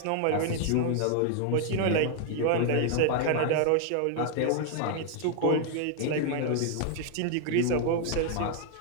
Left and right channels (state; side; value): different; both; correlation 0.00